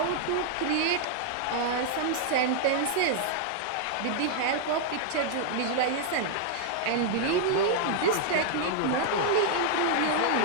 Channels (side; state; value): both; different; correlation -0.01